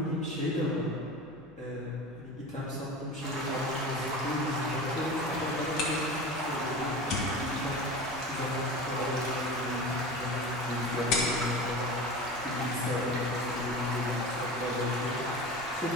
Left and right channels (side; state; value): left; noise; hum, 27 dB below the sound